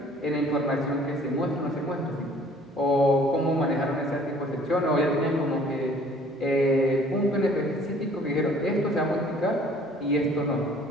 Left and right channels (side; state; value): both; normal; correlation 0.55